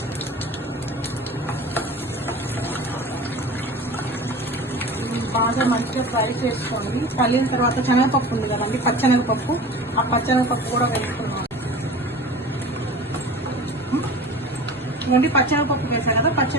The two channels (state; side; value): normal; both; correlation 0.37